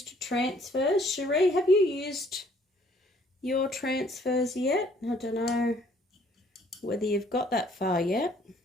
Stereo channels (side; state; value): both; normal; correlation 0.61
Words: transfers? Cherie, have you used your transfers yet? I don't know whether you've got that far yet.